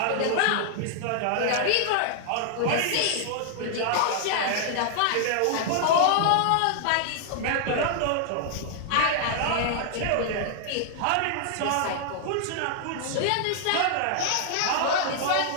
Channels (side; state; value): both; different; correlation -0.01